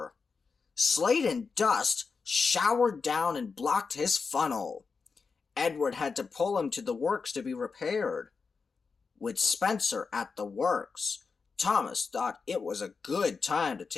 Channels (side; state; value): right; quieter; 5.0 dB